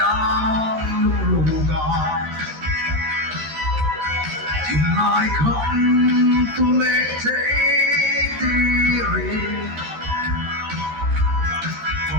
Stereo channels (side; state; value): left; late; 13 ms